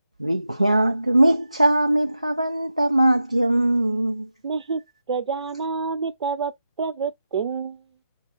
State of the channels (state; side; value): inverted; both; correlation -0.88